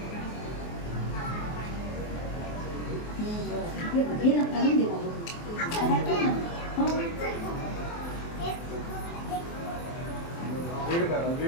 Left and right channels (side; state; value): right; late; 24 ms